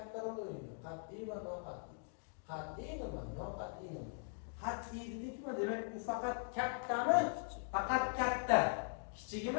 rol o'ynaydi. Qat'iy va noqat'iy. Qat'iy nima? Noqat'iy nima? Qat'iy dedikmi? Demak, u faqat kattami? Faqat katta.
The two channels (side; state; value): right; silent; digital silence